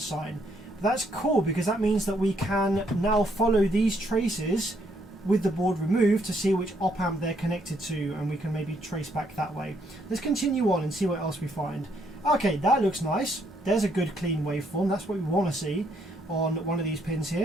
But that's cool, because that means that we can now follow these traces with the board removed to see which op amp they're connected to, and we can maybe trace back that way. Let's continue on and see what else we find. Okay, that looks nice. There's a good clean waveform. That's what we want to see on one of these pins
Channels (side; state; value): both; normal; correlation 0.72